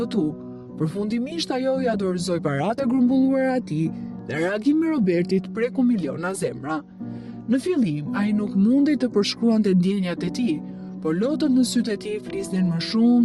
përfundimisht ajo ja dorëzoi paratë e grumbulluara atij dhe reagimi i Robertit preku miliona zemra. Në fillim, ai nuk mundej të përshkruante ndjenjat e tij, por lotët në sytë e tij flisnin më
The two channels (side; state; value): both; identical; correlation 1.00